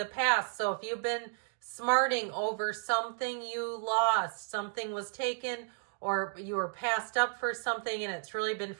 past. So if you've been smarting over something you lost, something was taken, or you were passed up for something and it's really been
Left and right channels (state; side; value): silent; left; 56 dB below the other